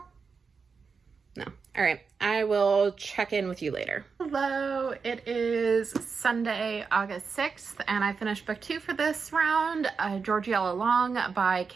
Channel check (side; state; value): left; quieter; 5.3 dB